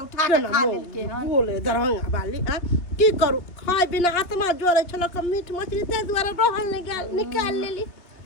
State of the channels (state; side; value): late; right; 2.6 ms